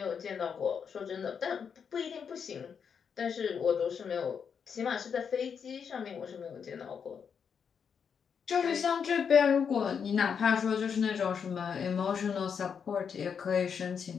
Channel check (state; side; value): quieter; right; 6.8 dB